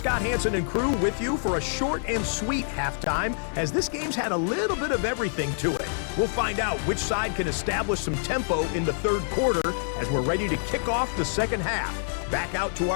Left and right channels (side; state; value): right; silent; digital silence